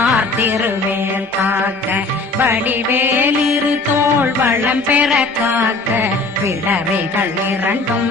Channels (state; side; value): quieter; right; 3.4 dB